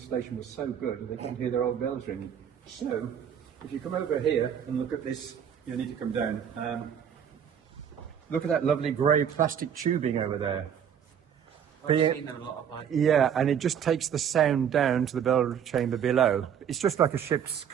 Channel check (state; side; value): quieter; left; 8.4 dB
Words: was so good they couldn't hear their old bells ringing. So, if you come over here and look at this, you need to come down. Look at that lovely grey plastic tubing over there. I've seen them a lot of like. Yeah, and it just takes the sound down to the bell chamber below. It's just like a ship's